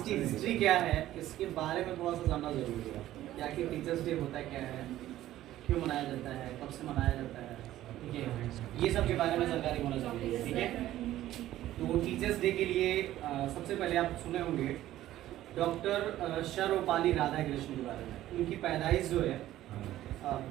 हिस्ट्री क्या है इसके बारे में थोड़ा सा जानना जरूरी है। क्या कि टीचर्स डे होता क्या है, क्यों मनाया जाता है, कब से मनाया जाता है, ठीक है, ये सब के बारे में जानकारी होना जरूरी है। ठीक है, तो टीचर्स डे के लिए सबसे पहले आप सुने होंगे डॉक्टर सर्वपल्ली राधाकृष्णन के बारे में। उनकी पैदाइश जो है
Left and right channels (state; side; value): quieter; left; 14.0 dB